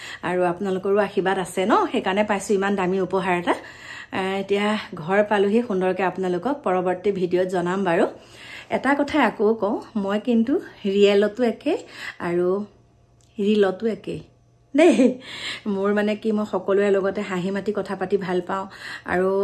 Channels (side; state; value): both; identical; correlation 1.00